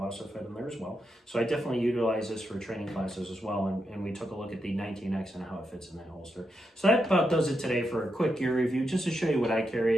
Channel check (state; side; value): normal; both; correlation 0.84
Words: also fit in there as well. So I definitely utilize this for training classes as well, and we took a look at the 19X and how it fits in that holster. So that about does it today for a quick gear review, just to show you what I